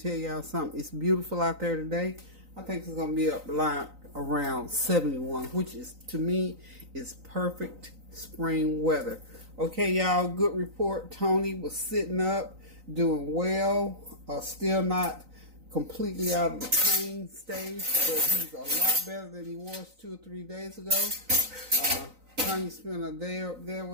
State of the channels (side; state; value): left; late; 3.9 ms